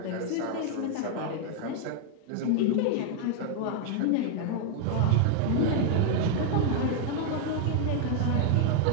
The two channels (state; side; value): different; both; correlation 0.00